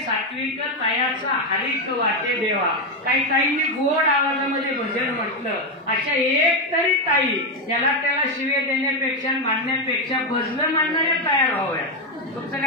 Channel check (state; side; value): normal; both; correlation 0.07